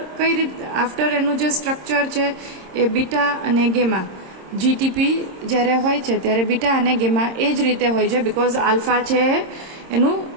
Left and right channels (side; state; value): left; late; 26 ms